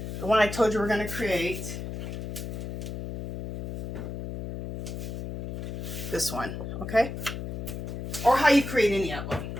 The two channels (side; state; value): left; noise; hum, 6 dB below the sound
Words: the one I told you we're going to create, this one. Okay. Or how you create any of them.